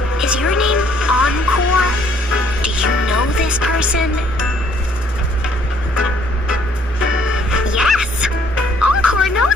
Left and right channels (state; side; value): normal; both; correlation 0.63